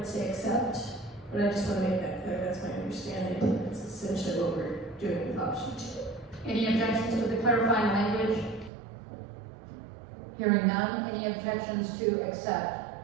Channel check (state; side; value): drops out; left; at 8.7 s